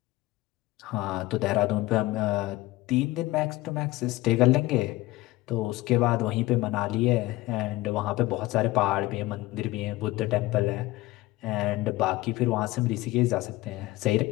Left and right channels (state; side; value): quieter; right; 18.8 dB